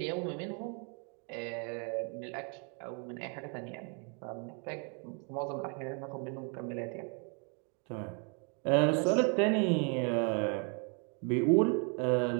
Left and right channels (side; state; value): left; quieter; 37.6 dB